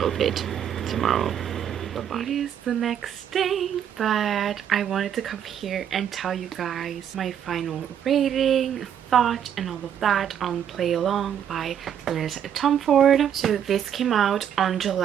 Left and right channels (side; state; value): left; quieter; 9.2 dB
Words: it tomorrow. Bye-bye. It is the next day, but I wanted to come here and tell you guys my final rating, thought, and all of that on Play Along by Liz Tomforde. So this came out on